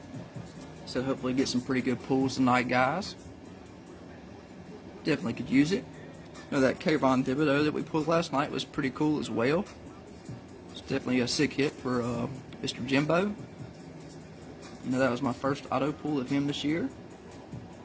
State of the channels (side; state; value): both; identical; correlation 1.00